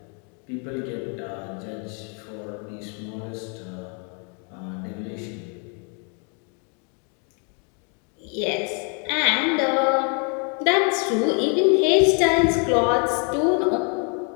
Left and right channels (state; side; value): quieter; right; 37.9 dB